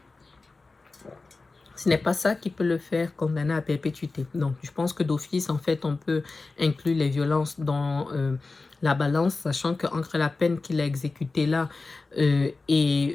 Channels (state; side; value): quieter; right; 3.7 dB